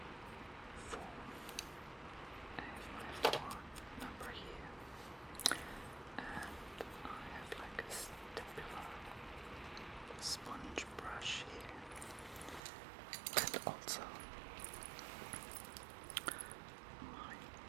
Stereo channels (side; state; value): left; drops out; at 12.6 s